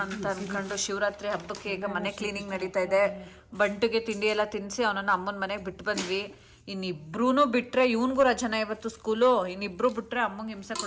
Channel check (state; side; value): identical; both; correlation 1.00